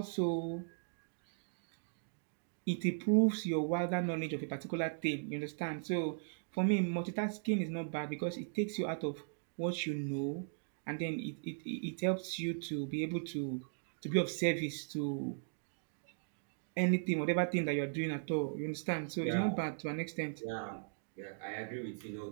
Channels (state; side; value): silent; left; digital silence